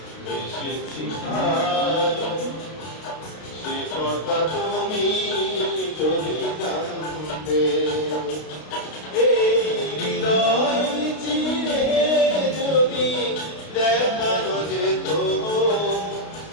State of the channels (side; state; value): right; late; 32 ms